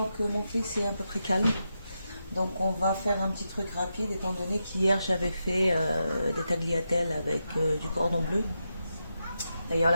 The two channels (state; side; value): inverted; both; correlation -0.87